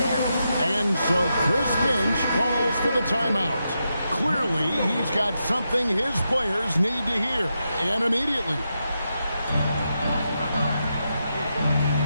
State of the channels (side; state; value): both; inverted; correlation -0.85